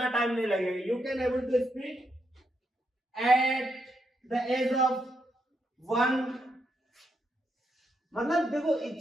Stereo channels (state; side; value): normal; both; correlation 0.80